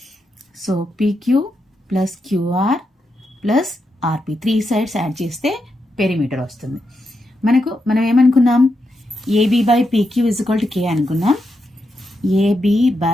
So PQ plus QR plus RP 3 sides add చేస్తే perimeter వస్తుంది. మనం ఏమనుకున్నాం? AB by PQ is equal to K అనుకున్నాం. AB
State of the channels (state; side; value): normal; both; correlation 0.85